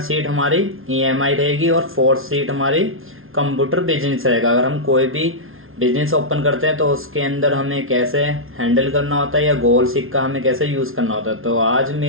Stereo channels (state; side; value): late; left; 0.61 ms